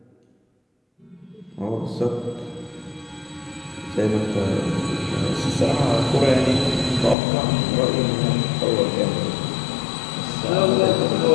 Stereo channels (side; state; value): right; drops out; at 7.2 s